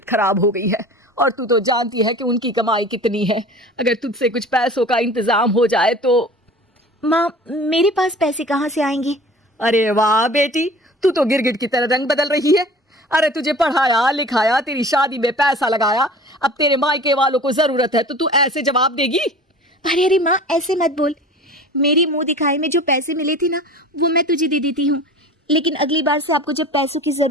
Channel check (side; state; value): both; normal; correlation 0.41